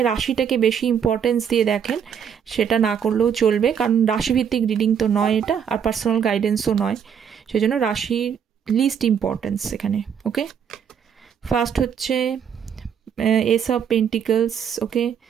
রাশিটাকে বেশি ইম্পর্টেন্স দিয়ে দেখেন, সেটা না করলেও চলবে, কারণ রাশিভিত্তিক রিডিং তো নয় এটা, আর পার্সোনাল গাইডেন্সও নয়, সেই জন্য রাশির লিস্ট ইম্পর্টেন্স এখানে। ওকে, ফার্স্ট হচ্ছে S of pentacles. Okay,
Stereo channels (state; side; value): quieter; left; 7.8 dB